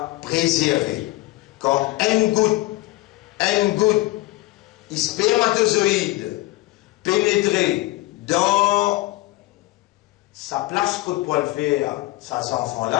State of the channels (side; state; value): right; quieter; 19.1 dB